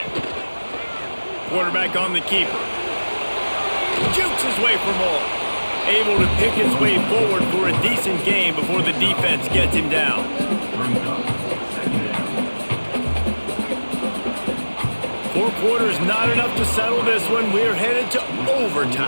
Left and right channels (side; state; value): both; inverted; correlation -1.00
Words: Quarterback on the keeper. Jukes his way for more. Able to pick his way forward for a decent game before the defense gets him down. 4 quarters not enough to settle this one. We're headed to